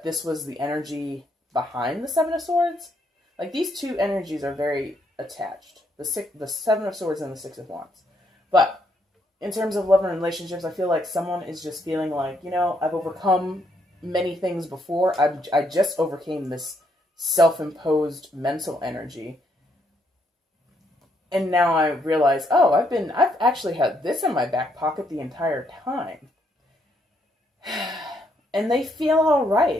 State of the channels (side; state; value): both; normal; correlation 0.74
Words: this was the energy behind the Seven of Swords. Like, these two energies are very attached. The Seven of Swords and the Six of Wands. But in terms of love and relationships, I feel like someone is just feeling like, you know, I've overcome many things before. I just overcame this self-imposed mental energy. And now I realize, oh, I've actually had this in my back pocket the entire time. And they feel all